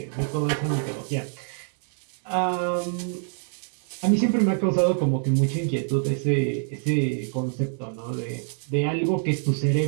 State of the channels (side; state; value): left; silent; 56 dB below the other